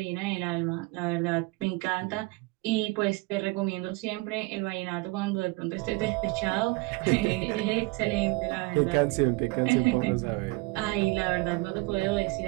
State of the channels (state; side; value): quieter; left; 24.4 dB